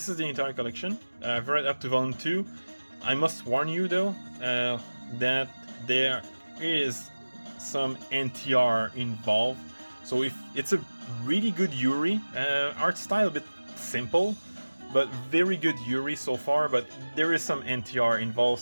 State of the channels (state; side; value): inverted; both; correlation -1.00